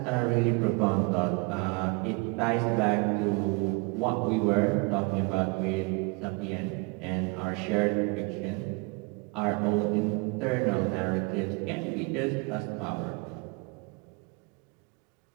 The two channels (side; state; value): left; quieter; 29.2 dB